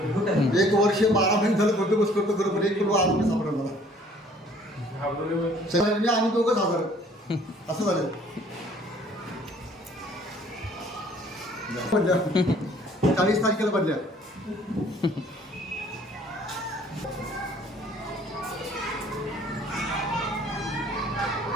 एक वर्ष 12 महिने झालं बंदोबस्त करतो बरोबर. एक किलो आरोग्य सापडलं मला. मी आम्ही दोघंच हजर असं झालं. 40 तारखेला बदल्या.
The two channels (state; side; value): normal; both; correlation 0.57